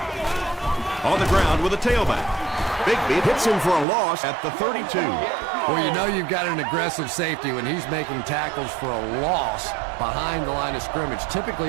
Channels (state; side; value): drops out; left; at 3.9 s